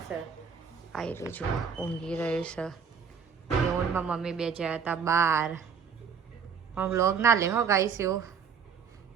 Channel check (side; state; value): left; quieter; 6.5 dB